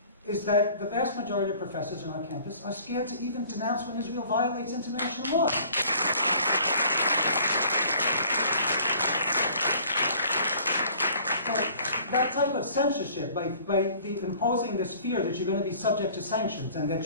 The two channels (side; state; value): both; inverted; correlation -0.52